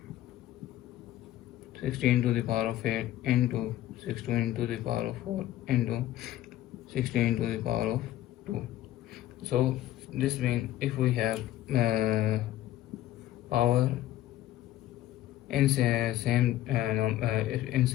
16 to the power of 8 into 16 to the power of 4 into 16 to the power of 2. So this means if we have power in same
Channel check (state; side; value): quieter; right; 13.7 dB